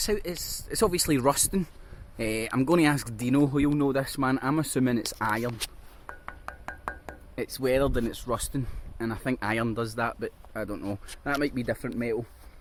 out, it's obviously rusting. I'm going to ask Dino, who you'll know this, man. I'm assuming it's iron. It's weathered and it's rusting, and I think iron does that, but I don't know. That might be different metal.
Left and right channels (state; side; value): identical; both; correlation 1.00